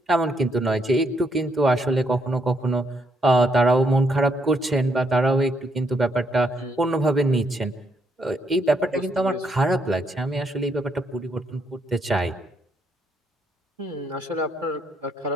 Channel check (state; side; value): normal; both; correlation 0.75